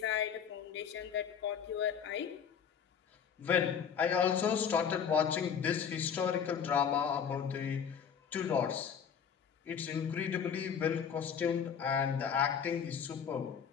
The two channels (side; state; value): right; quieter; 7.5 dB